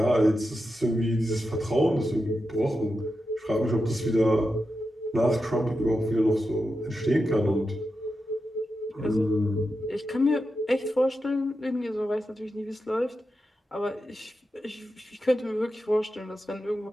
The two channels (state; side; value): normal; both; correlation 0.89